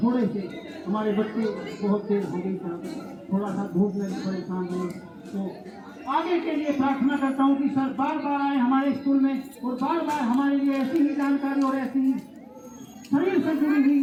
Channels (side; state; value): both; identical; correlation 1.00